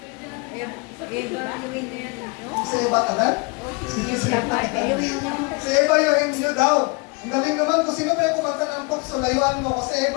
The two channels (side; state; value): right; quieter; 29.0 dB